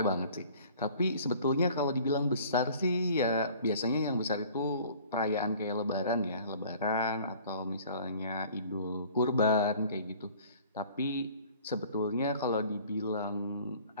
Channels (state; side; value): inverted; both; correlation -0.50